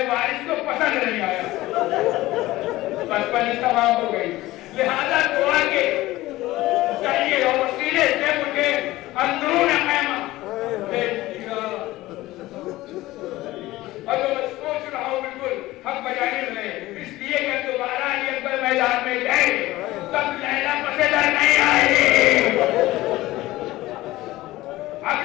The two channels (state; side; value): quieter; right; 17.6 dB